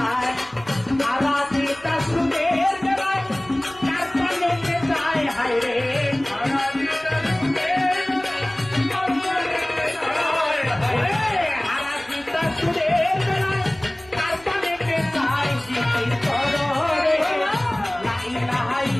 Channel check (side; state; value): right; noise; rumble, 26 dB below the sound